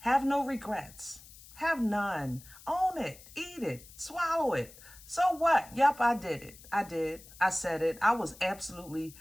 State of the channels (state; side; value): noise; left; hiss, 20 dB below the sound